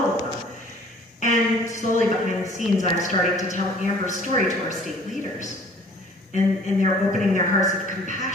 of them. And slowly behind the scenes, I'm starting to tell Amber's story to our state leaders. And they're opening their hearts of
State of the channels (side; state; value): both; normal; correlation 0.52